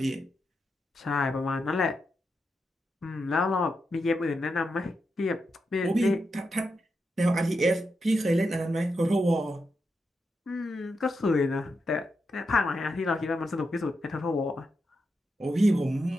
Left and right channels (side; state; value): both; normal; correlation 0.85